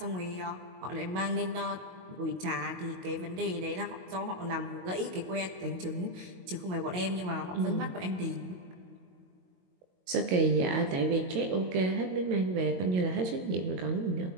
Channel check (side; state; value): left; late; 22 ms